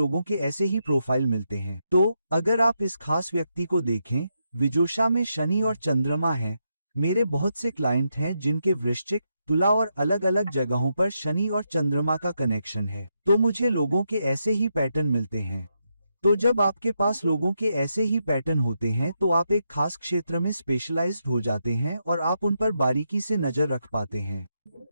के ऐसे ही प्रोफाइल मिलते हैं। तो अगर आप इस खास व्यक्ति को देखें, विजोषा में शनि और चंद्रमा है, मेरे बहुत से क्लाइंट हैं जिनके वृश्चिक, तुला और अलग अलग जगहों पर शनि और चंद्रमा का कनेक्शन है, तो मुझे लोगों के ऐसे ही पैटर्न मिलते हैं। तो जब आपके पास लोगों के ऐसे ही पैटर्न होते हैं तो आप एक खास क्षेत्र में स्पेशलाइज्ड हो जाते हैं और आप उन पर बारीकी से नजर रख पाते हैं।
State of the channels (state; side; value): inverted; both; correlation -0.82